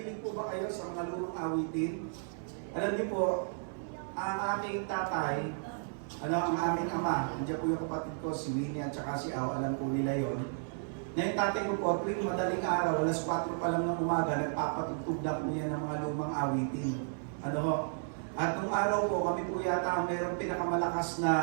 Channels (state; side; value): silent; left; 56 dB below the other